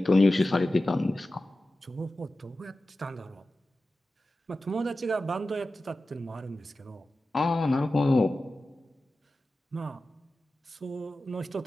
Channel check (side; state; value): both; normal; correlation 0.94